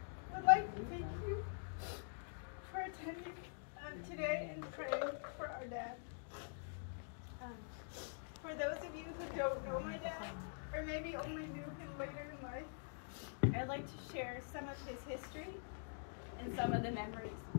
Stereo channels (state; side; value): silent; right; digital silence